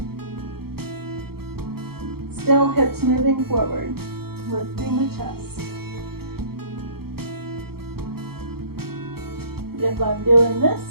Still hips moving forward, lifting the chest. If I'm doing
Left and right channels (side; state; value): left; late; 0.95 ms